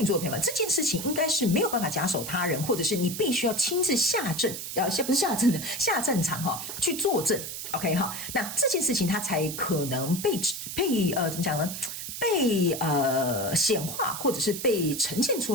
座的朋友们，这件事情应该是没有办法假手他人，或者是你必须要亲自下阵不是下阵的下战场去作证 OK 那这件事情它才可能被怎么讲呢？被显化或者是被呈现出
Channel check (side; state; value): right; noise; hiss, 7 dB below the sound